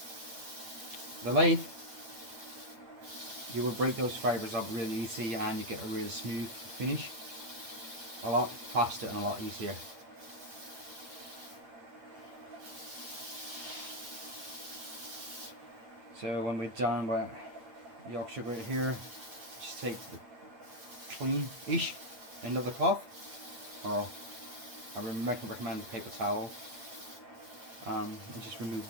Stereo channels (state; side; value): late; left; 8.8 ms